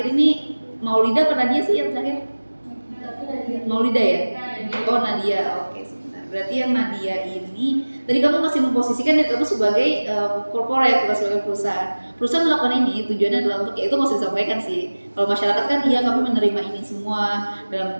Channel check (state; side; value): inverted; both; correlation -1.00